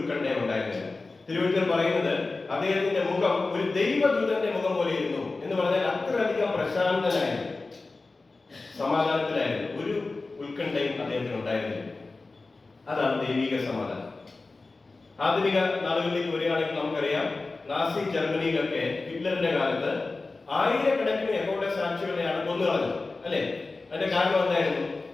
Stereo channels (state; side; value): quieter; right; 3.6 dB